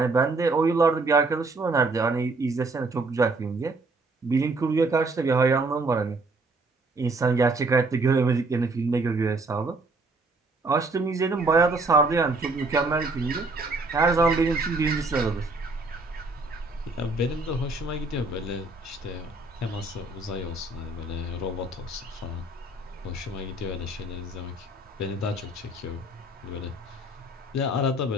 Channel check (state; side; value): quieter; left; 3.0 dB